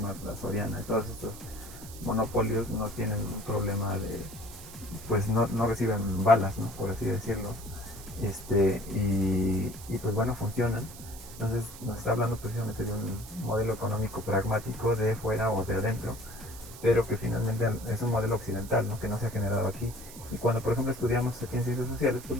la Soriana y todos estos monopolios no tienen un problema pues no reciben balas, ¿no? Por así decirlo, y pues bueno, funcionan. Entonces nos está hablando precisamente de un modelo económico pragmático de fuera o de adentro, pero que finalmente es un modelo occidental, ¿no? Que no se ha generado aquí. Y cuando por ejemplo estudiamos aquí en ciencias sociales, pues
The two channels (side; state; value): right; noise; hiss, 16 dB below the sound